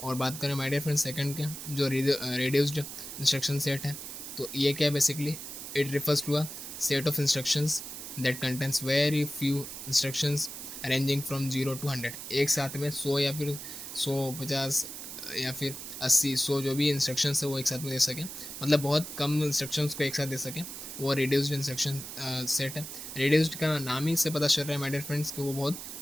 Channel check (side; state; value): right; noise; hiss, 9 dB below the sound